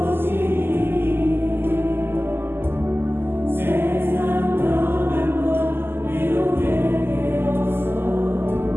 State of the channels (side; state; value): left; late; 0.11 ms